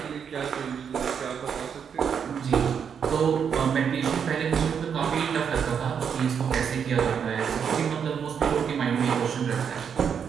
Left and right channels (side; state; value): left; quieter; 7.3 dB